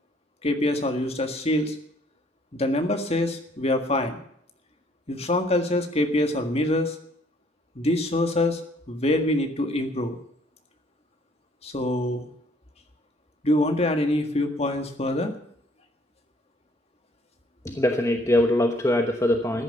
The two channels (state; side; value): normal; both; correlation 0.63